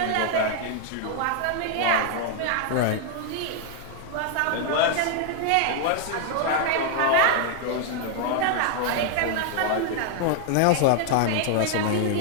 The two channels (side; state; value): both; different; correlation 0.00